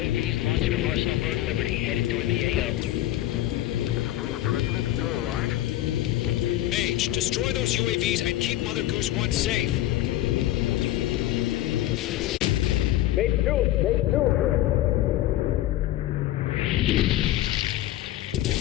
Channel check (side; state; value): right; quieter; 14.6 dB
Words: launching from Arsenal Bird Liberty, headed toward the AO. President still alive? Mage, destroy those UAVs and keep Mother Goose 1 safe. Mate 2! Mate 2!